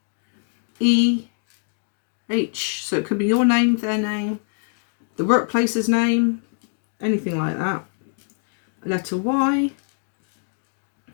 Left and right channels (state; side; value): silent; right; 63 dB below the other